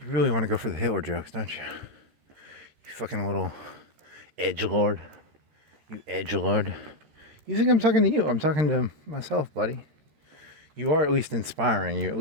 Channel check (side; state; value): left; late; 13 ms